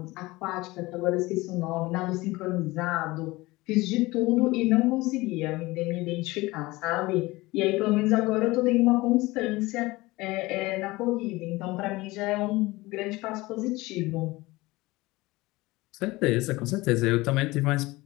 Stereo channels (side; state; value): right; quieter; 20.8 dB